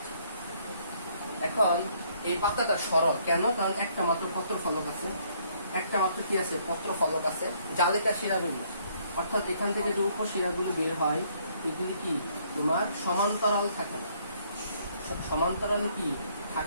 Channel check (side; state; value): both; inverted; correlation -0.66